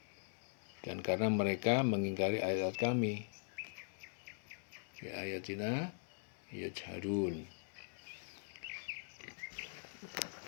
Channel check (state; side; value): silent; right; digital silence